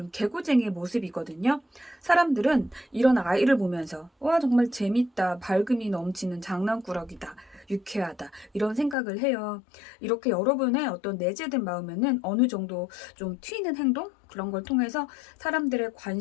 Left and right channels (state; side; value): drops out; right; at 9.0 s